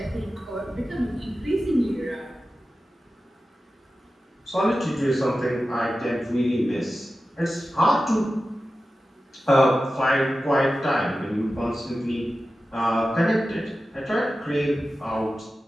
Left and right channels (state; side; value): normal; both; correlation 0.94